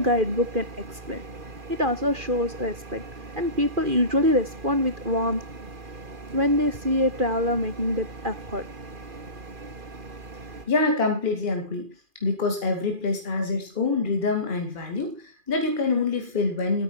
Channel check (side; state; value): left; late; 2.4 ms